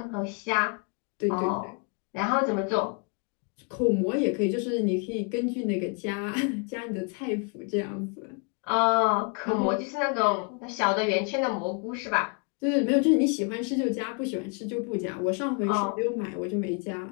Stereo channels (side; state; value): right; quieter; 35.2 dB